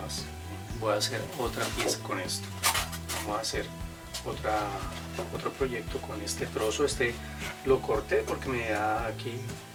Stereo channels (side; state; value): both; identical; correlation 1.00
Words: voy a hacer otra pieza con esto. Vamos a hacer otro proyecto con este trozo. Este lo corté porque me da aquí